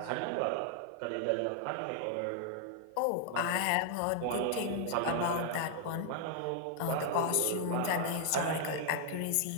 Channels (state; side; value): different; both; correlation 0.00